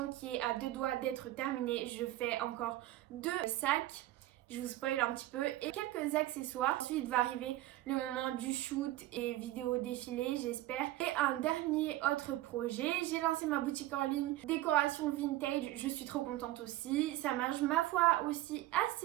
qui est à 2 doigts d'être terminée. Je fais encore 2 sacs. Je vous spoil un petit peu et quelques accessoires. Ensuite va arriver le moment du shoot et vidéo défilé j'espère. Et un dernier autre projet, j'ai lancé ma boutique en ligne décoration vintage, je suis trop contente aussi. Ça marche ma foi aussi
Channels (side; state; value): left; quieter; 15.9 dB